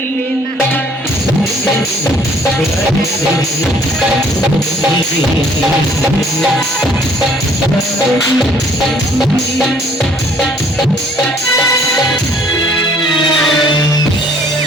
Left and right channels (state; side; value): normal; both; correlation 0.60